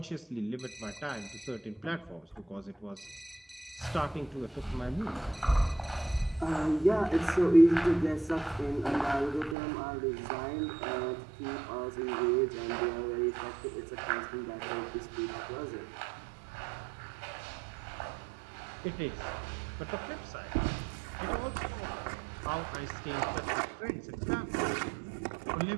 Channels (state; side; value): drops out; left; at 9.6 s